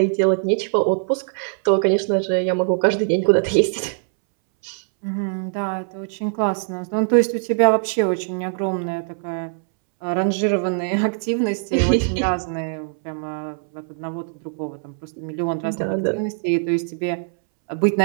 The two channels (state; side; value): silent; left; 64 dB below the other